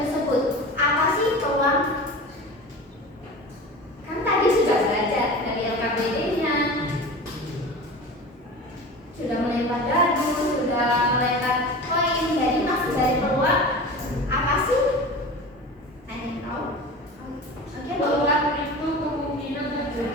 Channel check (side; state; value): both; normal; correlation 0.34